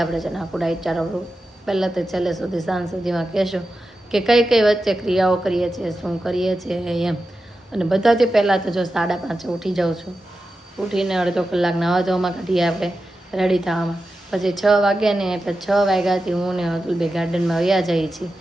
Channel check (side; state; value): both; normal; correlation 0.91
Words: આપણે છે ને આખું ડાયટ ચાર્ટ આપણું પહેલાં તો છેલ્લે સુધી સાંજ સુધીમાં કહેશું કે કઈ કઈ વચ્ચે ક્રિયાઓ કરીએ છીએ, શું કરીએ છીએ એમ. અને બધાથી પહેલાં તો જો 5:30 ઉઠી જાઉં છું. ઉઠીને અડધો કલાક નાવા ધોવામાં કાઢીએ આપણે રેડી થવામાં. પછી 6 વાગ્યા ને એટલે 6 વાગ્યાથી હું ને અતુલભાઈ ગાર્ડનમાં વયા જઈએ છીએ.